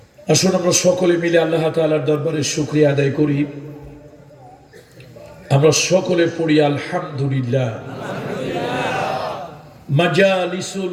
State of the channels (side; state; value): both; identical; correlation 1.00